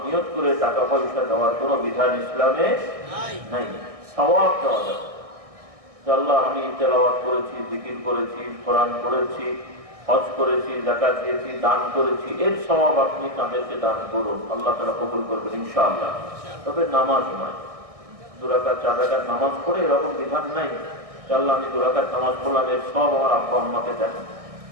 নিয়ত করে টাকা পয়সা দেওয়ার কোনো বিধান ইসলামে নাই। সওয়াব দেওয়া যাবে। আল্লাহ আমি তেলাওয়াত করেছি, জিকির করেছি, কোরআন পড়েছি, হজ করেছি, যাকাত দিয়েছি, দান করেছি, এর সওয়াব আপনি তাদেরকে দান করুন, আল্লাহ তাআলা কবুল করবেন ইনশাআল্লাহ। তবে নামাজ নয়, 2 রাকাত 4 রাকাত নামাজ পড়ে এরকম বিধান নাই। আল্লাহ আমি 2 রাকাত নামাজ পড়লাম, এর সব আমার আব্বা আম্মাকে দেন।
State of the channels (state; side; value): late; left; 1.6 ms